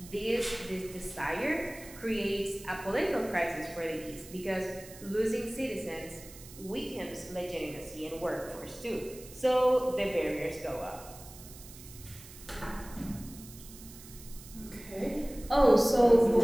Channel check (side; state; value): right; noise; hiss, 17 dB below the sound